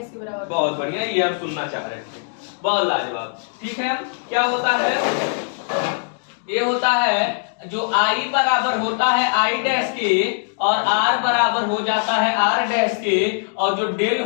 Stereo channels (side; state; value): right; silent; digital silence